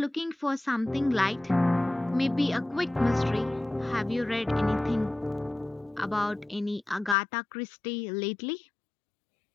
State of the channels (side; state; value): right; drops out; at 7.2 s